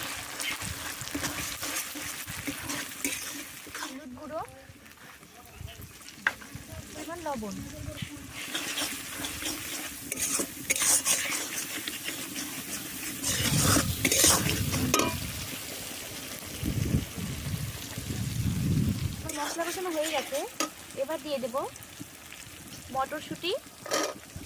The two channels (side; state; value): both; identical; correlation 1.00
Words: হলুদ গুঁড়ো, এবার লবণ। মশলা কষানো হয়ে গেছে। এবার দিয়ে দেব মটরশুঁটি,